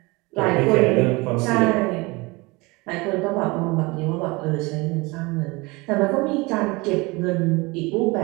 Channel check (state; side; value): quieter; left; 24.6 dB